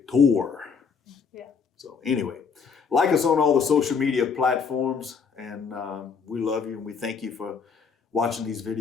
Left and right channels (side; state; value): right; quieter; 5.8 dB